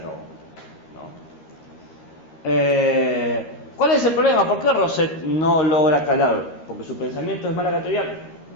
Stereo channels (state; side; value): late; right; 13 ms